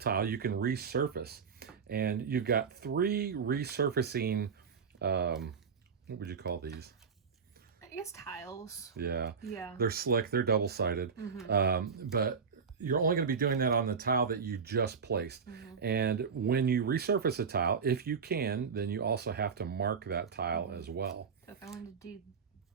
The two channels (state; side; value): quieter; left; 5.9 dB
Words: you can resurface. And you've got 3 resurfacing, what would you call these? I guess tiles. Yeah. Yeah. They're slick, they're double-sided. But you're only going to be doing that on the tile that you just placed. And when you resurface a tile, if you can, then you also have to mark that tile as well. So if I wanted to do,